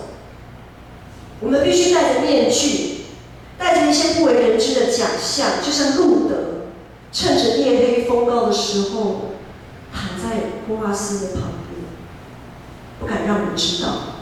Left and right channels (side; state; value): both; identical; correlation 1.00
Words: 我们必须戴着面具，带着一些不为人知的假象，就像路德，趁着夜黑风高的时候，躺在波阿斯的旁边，不敢让人知道。